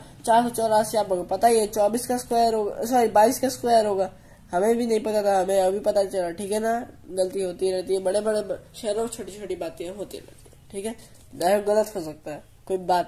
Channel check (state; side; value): identical; both; correlation 1.00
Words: 484 आप लोगों को पता ही है, 24 का स्क्वायर होगा, सॉरी 22 का स्क्वायर होगा। हमें भी नहीं पता था, हमें अभी पता चला, ठीक है ना। गलती होती रहती है, बड़े बड़े शहरों में छोटी छोटी बातें होती रहती है, ठीक है। डायलॉग गलत हो सकता है, कोई